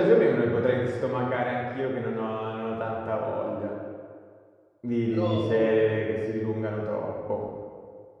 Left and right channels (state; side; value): identical; both; correlation 1.00